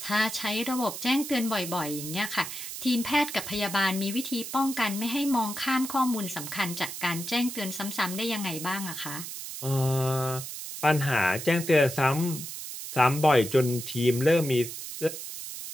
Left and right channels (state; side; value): noise; right; hiss, 8 dB below the sound